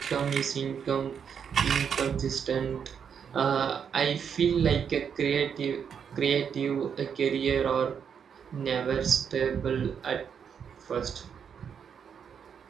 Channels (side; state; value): left; quieter; 7.3 dB